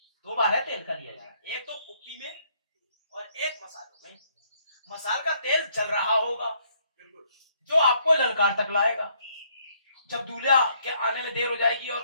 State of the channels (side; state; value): both; inverted; correlation -0.68